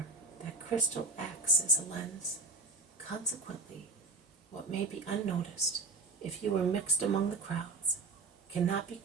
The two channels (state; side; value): quieter; left; 3.7 dB